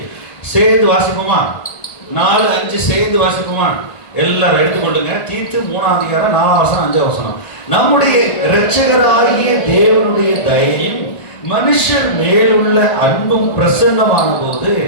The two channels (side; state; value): right; late; 1.5 ms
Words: சேர்ந்து வாசிப்போமா? 4 5 சேர்ந்து வாசிப்போமா? எல்லாரும் எடுத்துக்கொள்ளுங்க. தீத்து 3ஆம் அதிகாரம் 4ஆம் வசனம் 5ஆம் வசனம். நம்முடைய இரட்சகராகிய தேவனுடைய தயையும் மனுஷர் மேலுள்ள அன்பும் பிரசன்னமான போது